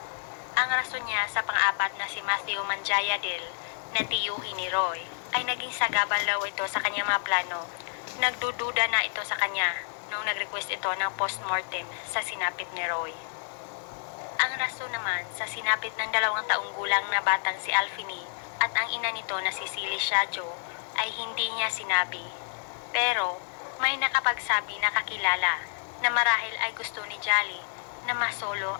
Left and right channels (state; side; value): silent; right; 59 dB below the other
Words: Ang rason niya sa pang-apat na si Matthew Manjayadil na tiyuhin ni Roy ay naging sagabal daw ito sa kanyang mga plano. Nagdududa na ito sa kanya nung nag-request ito ng post-mortem sa sinapit ni Roy. Ang rason naman sa sinapit ng 2 taong gulang na batang si Alfini at ang ina nito na si Silly Shadjo ay hindi niya sinabi. Pero may nakapagsabi na kakilala na marahil ay gusto ni Jolly na masolo